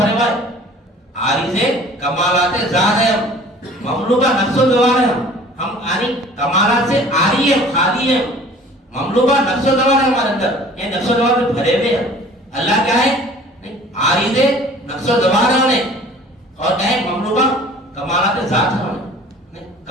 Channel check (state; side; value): normal; both; correlation 0.48